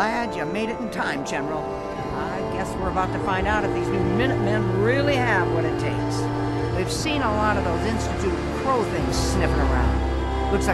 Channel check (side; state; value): both; identical; correlation 1.00